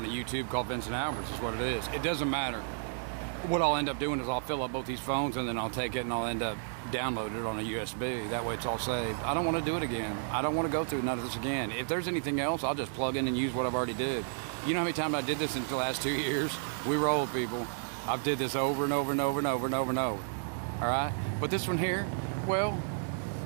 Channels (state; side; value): silent; left; digital silence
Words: a YouTube called Vincent Albert's is what it is. It doesn't matter. What I'll end up doing is I'll fill up both these phones and then I'll take it and I'll end up downloading it on a USB. That way it's all saved. I don't want to do it again. I don't want to go through none of this again. If there's anything else, I'll just plug in and use what I've already did. You know how many times I did this in the last 2 years? We roll, people. I've did this over and over and over and over and over and over. All right? But this one here, well,